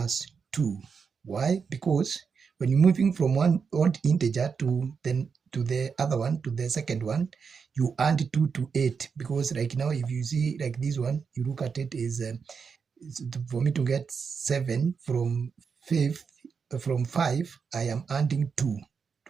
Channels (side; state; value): left; quieter; 5.8 dB